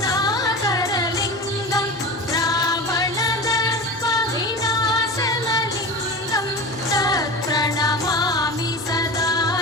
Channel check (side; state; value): both; normal; correlation 0.30